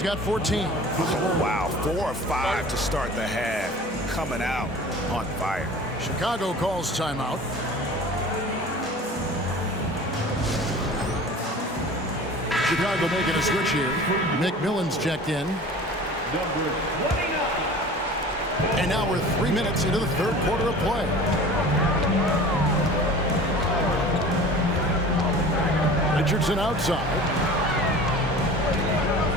got 14. Wow, 4 or 5 to start the half. Coming out on fire. Chicago calls timeout. Chicago making a switch here. McMillan's checked in. Number 29. And now we're 3 minutes into the third quarter of play. Richardson outside.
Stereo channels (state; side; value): normal; both; correlation 0.41